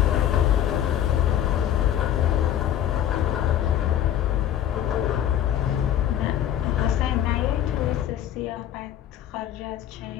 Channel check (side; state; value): right; quieter; 11.0 dB